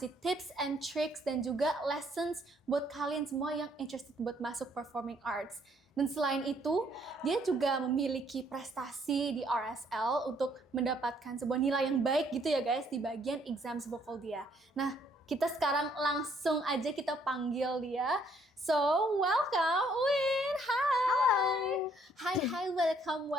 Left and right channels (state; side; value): normal; both; correlation 0.66